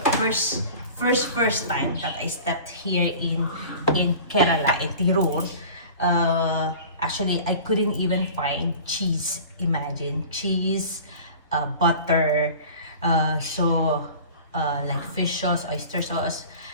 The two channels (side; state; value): both; inverted; correlation -0.40